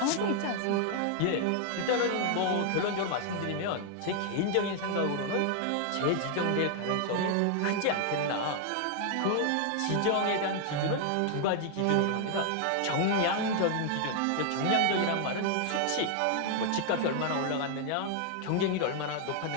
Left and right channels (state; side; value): different; both; correlation 0.00